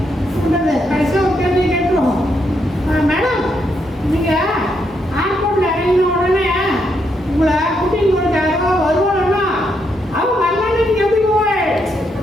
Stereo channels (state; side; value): normal; both; correlation 0.78